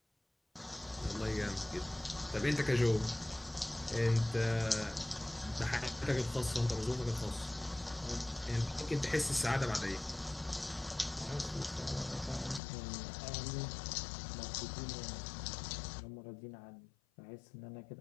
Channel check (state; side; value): drops out; right; at 12.6 s